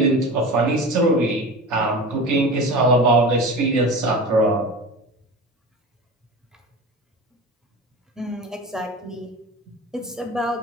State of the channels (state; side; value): normal; both; correlation 0.31